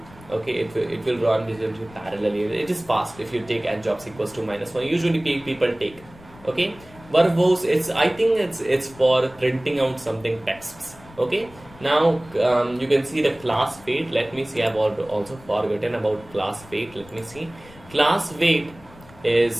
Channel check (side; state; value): left; noise; rumble, 22 dB below the sound